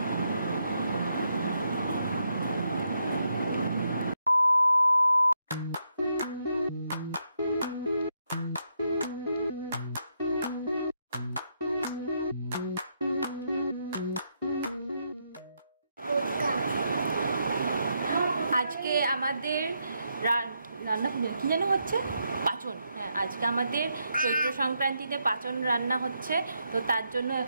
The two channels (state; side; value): inverted; both; correlation -0.80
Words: আজকে আমাদের রান্না কি যেন হচ্ছে পাচন। হ্যাঁ, আজকে আমাদের চৈত্র সংক্রান্তিতে পাচন রান্না হচ্ছে। তো তার জন্য